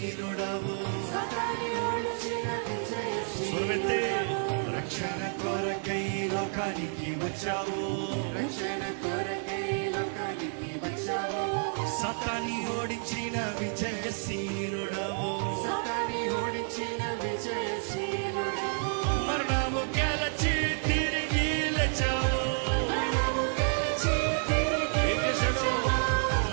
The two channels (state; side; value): silent; left; 58 dB below the other